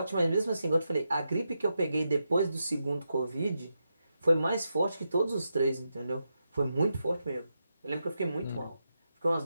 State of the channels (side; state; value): both; inverted; correlation -0.86